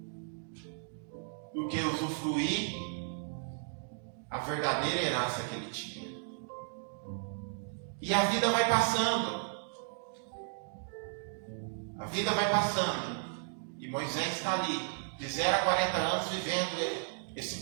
do que usufruir a verdadeira herança que ele tinha. E a vida vai passando. A vida vai passando. E Moisés está ali, de 0 a 40 anos, vivendo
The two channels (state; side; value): silent; left; digital silence